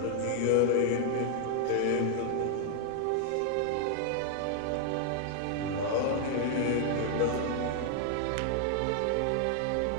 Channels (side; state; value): both; different; correlation 0.00